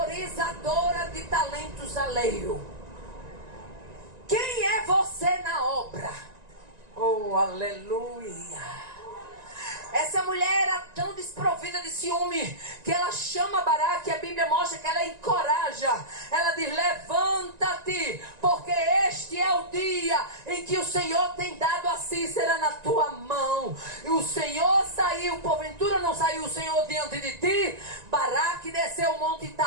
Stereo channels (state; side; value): late; left; 1.9 ms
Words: de talentos alheios? Quem é você na obra? Oh, aleluia. Essa mulher era tão desprovida de ciúme que ela chama Baraque, e a Bíblia mostra que ela encoraja. Ela diz: levanta-te, porque este é o dia em que o Senhor tem dado a Cícera na tua mão. E o Senhor saiu, porventura não saiu o Senhor diante de ti? Baraque desceu o monte